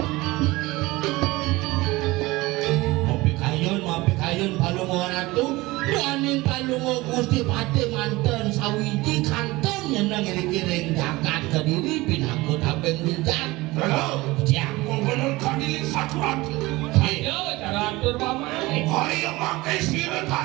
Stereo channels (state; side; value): quieter; left; 20.7 dB